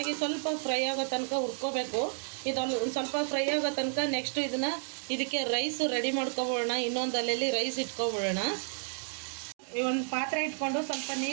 ಸ್ವಲ್ಪ ಫ್ರೈ ಆಗೋ ತನಕ ಹುರ್ಕೋಬೇಕು. ಇದೊಂದು ಸ್ವಲ್ಪ ಫ್ರೈ ಆಗೋ ತನಕ ನೆಕ್ಸ್ಟ್ ಇದಕ್ಕೆ ರೈಸ್ ರೆಡಿ ಮಾಡ್ಕೊಬಿಡೋಣ. ಇನ್ನೊಂದು ಅಲ್ಲೆಲ್ಲಿ ರೈಸ್ ಇಟ್ಕೊಬಿಡೋಣ. ಒಂದು ಪಾತ್ರೆ ಇಟ್ಕೊಂಡು ಸ್ವಲ್ಪ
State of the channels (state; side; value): silent; left; 57 dB below the other